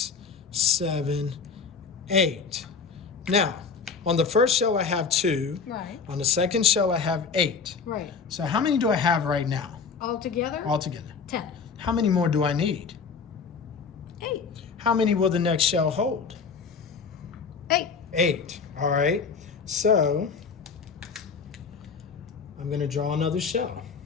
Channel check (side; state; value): right; quieter; 5.4 dB